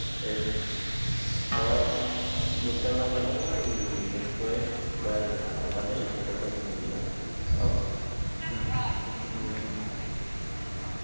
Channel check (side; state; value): both; inverted; correlation -1.00